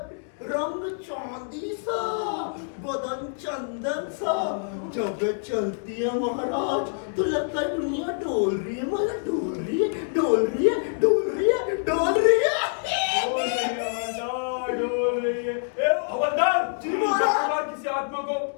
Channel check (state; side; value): silent; right; digital silence